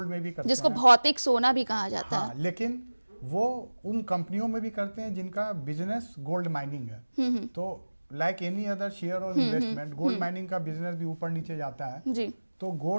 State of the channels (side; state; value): both; inverted; correlation -1.00